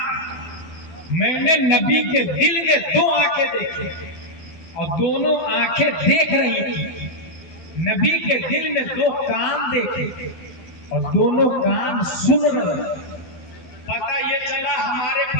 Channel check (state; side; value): late; right; 12 ms